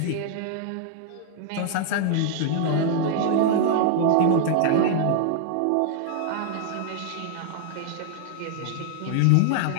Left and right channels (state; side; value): different; both; correlation -0.01